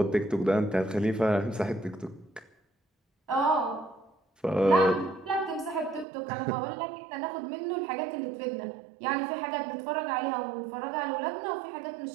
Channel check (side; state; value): left; drops out; at 6.1 s